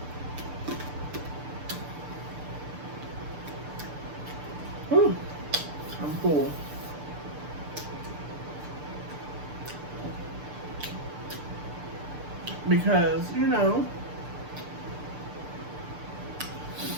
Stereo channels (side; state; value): left; late; 6.8 ms